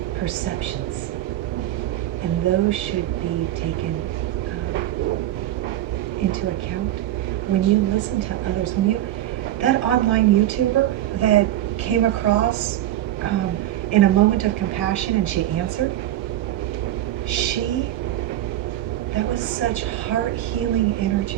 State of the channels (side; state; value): left; quieter; 13.4 dB